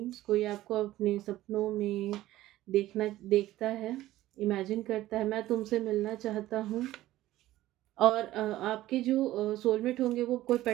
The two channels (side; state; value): left; quieter; 15.4 dB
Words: कोई आपको अपने सपनों में देखता है, इमेजिन करता है, मैं तुमसे मिलना चाहता हूँ। और आपके जो सोलमेट होंगे वो कोई